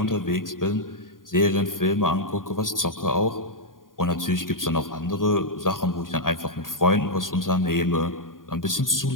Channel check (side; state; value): right; late; 0.90 ms